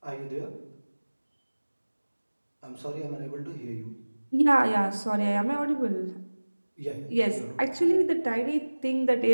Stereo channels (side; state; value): both; inverted; correlation -1.00